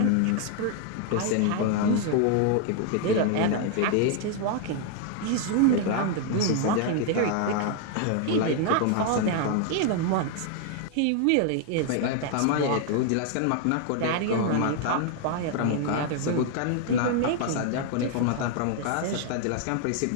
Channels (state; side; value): different; both; correlation 0.00